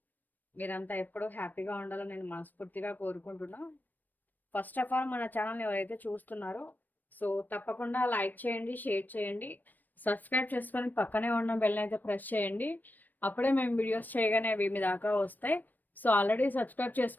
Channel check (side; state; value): right; late; 0.088 ms